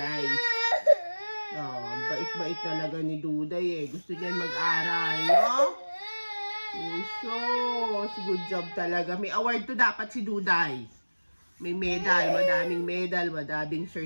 Oh, bait-bait talaga ni Duday eh. Gusto niyan mag-aral, no? Uso, good job talaga. May award to dapat si Duday. May medal, madaming medal, madaming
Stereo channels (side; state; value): both; inverted; correlation -1.00